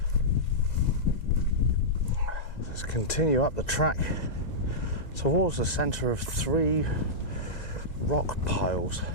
Let's continue up the track towards the centre of 3 rock piles.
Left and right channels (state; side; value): late; right; 2.0 ms